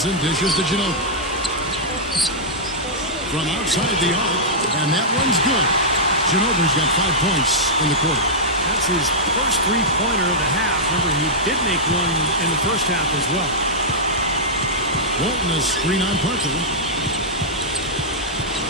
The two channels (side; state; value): both; normal; correlation -0.09